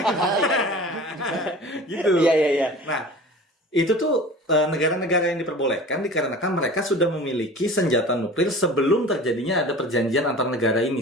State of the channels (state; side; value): normal; both; correlation 0.40